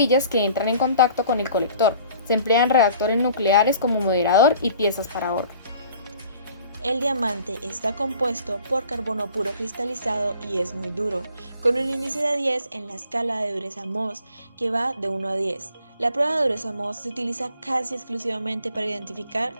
que entran en contacto con el colector. Se emplean reactores nucleares como moderador y piezas para horno. El diamante está compuesto por carbono puro cristalizado y es muy duro, con un índice de 10 en la escala de dureza Mohs, que va de 1 a 10. La prueba de dureza Mohs se utiliza casi exclusivamente para identificar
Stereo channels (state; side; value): inverted; both; correlation -0.51